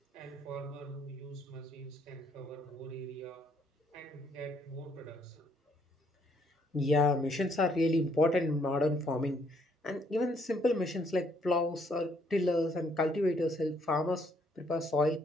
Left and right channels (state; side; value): normal; both; correlation 0.68